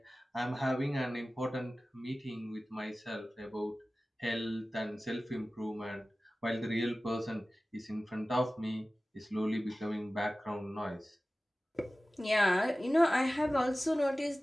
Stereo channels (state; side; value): normal; both; correlation 0.97